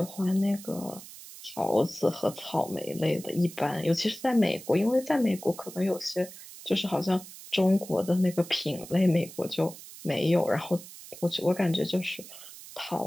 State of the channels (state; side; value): noise; right; hiss, 16 dB below the sound